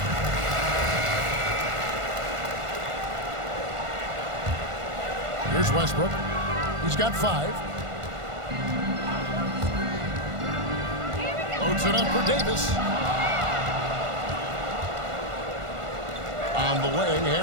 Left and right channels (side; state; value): left; late; 1.5 ms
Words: Here's Westbrook. He's got 5. Loads it up for Davis. On the wing,